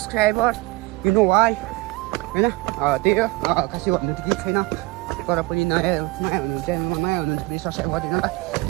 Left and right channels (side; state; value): left; quieter; 20.8 dB